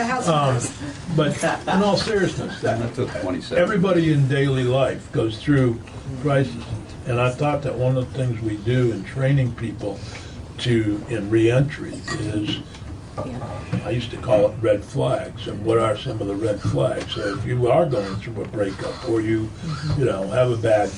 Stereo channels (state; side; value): identical; both; correlation 1.00